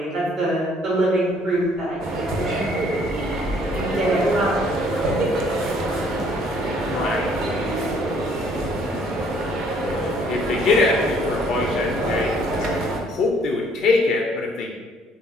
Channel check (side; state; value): both; normal; correlation 0.62